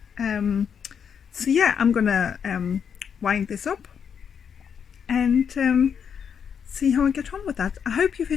So yeah, I'm gonna wind this up and see how I get on with that. I hope you've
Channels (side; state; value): right; quieter; 7.3 dB